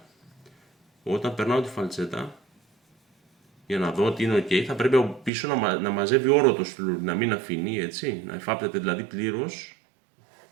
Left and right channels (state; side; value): drops out; left; at 5.3 s